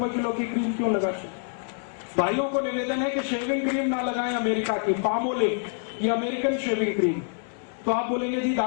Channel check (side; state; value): right; silent; digital silence